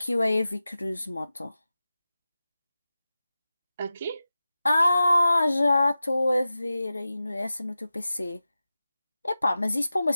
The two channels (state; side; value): inverted; both; correlation -0.94